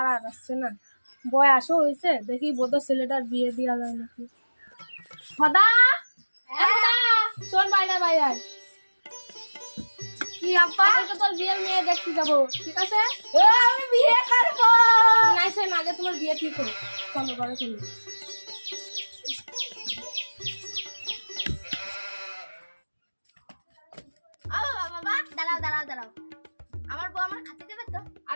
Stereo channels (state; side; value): inverted; both; correlation -1.00